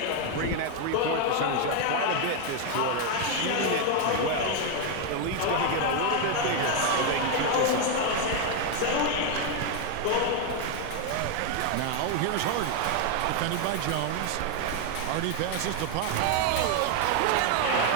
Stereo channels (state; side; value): different; both; correlation 0.01